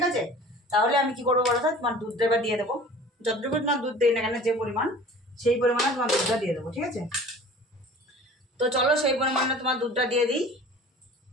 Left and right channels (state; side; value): normal; both; correlation 0.44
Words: আছে। তাহলে আমি কি করবো বলো তো, তোমার দুধটা এবার দিয়ে দেবো, যতটুকু তোমার দুধ দেয় না কেন, যে পরিমাণ সেই পরিমাণে তোমার দুধটা দিয়ে দেবো, ঠিক আছে। তো চলো সেই পরিমাণে তোমার দুধটা দিয়ে দিই,